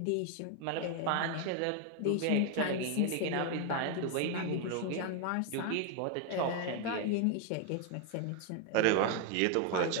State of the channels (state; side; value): different; both; correlation 0.01